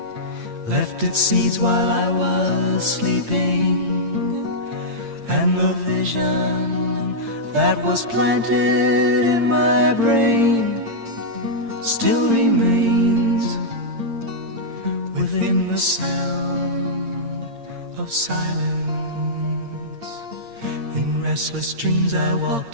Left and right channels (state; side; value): late; left; 8.7 ms